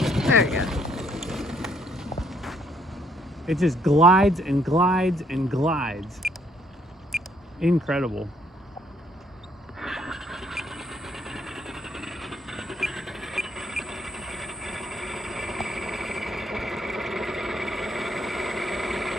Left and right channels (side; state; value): both; normal; correlation 0.68